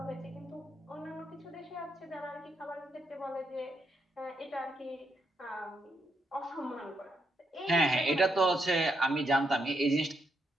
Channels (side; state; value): both; normal; correlation 0.79